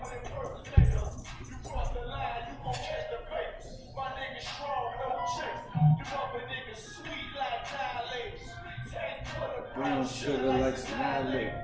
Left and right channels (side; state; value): both; identical; correlation 1.00